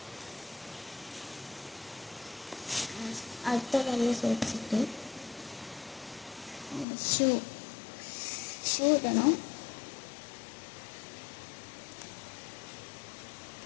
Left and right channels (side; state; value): right; drops out; at 6.9 s